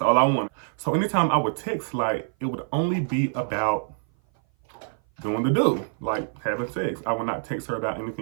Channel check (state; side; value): silent; left; 57 dB below the other